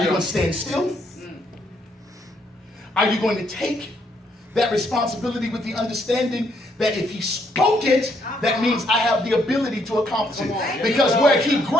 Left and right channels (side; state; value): both; normal; correlation 0.71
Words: you going to stand still? Are you going to take that responsibility with the understanding that if he spoke it, that means I have the ability to accomplish it? Because where he